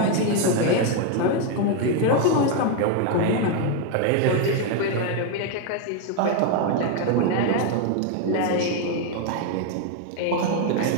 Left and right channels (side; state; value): both; different; correlation 0.01